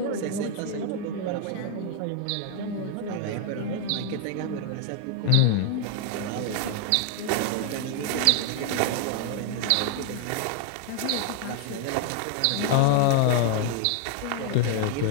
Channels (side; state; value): both; different; correlation 0.00